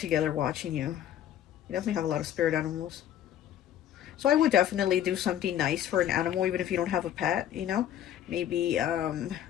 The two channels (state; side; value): quieter; right; 11.0 dB